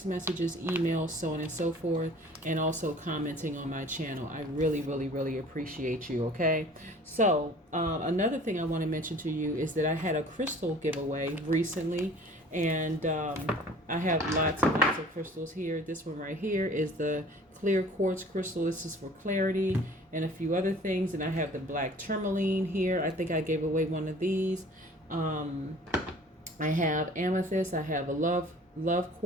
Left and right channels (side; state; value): both; normal; correlation 0.49